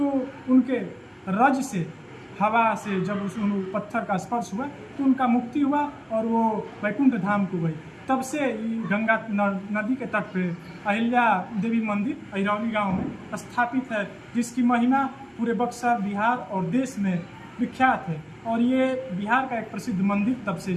उनके रज से, हवा से जब उस पत्थर का स्पर्श हुआ तो उनका मुक्ति हुआ और वो वैकुंठ धाम को गई। तब से ये गंगा नदी के तट पे अहिल्या देवी मंदिर अहिरौली गांव में स्थापित है, जिसकी महिमा पूरे बक्सर, बिहार और देश में विख्यात है। और ये बिहार का एक प्रसिद्ध मंदिर तब से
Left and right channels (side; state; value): both; identical; correlation 1.00